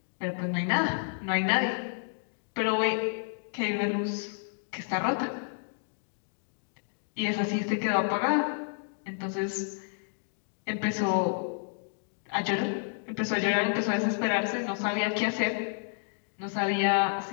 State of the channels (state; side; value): silent; right; digital silence